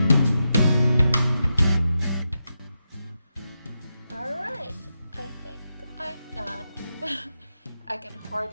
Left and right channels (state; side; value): inverted; both; correlation -0.87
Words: Alright, I think I'm done. I can